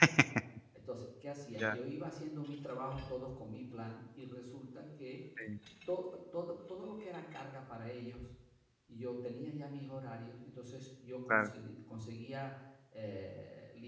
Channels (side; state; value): both; identical; correlation 1.00